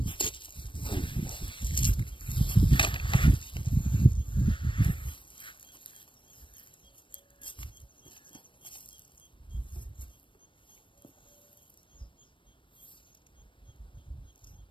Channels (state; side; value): late; right; 0.24 ms